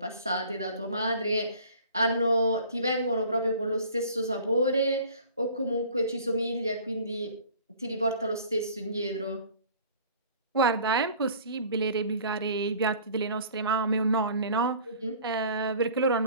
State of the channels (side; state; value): both; inverted; correlation -0.48